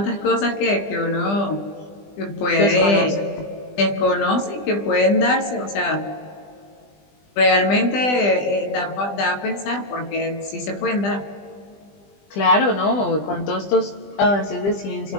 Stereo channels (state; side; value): late; right; 20 ms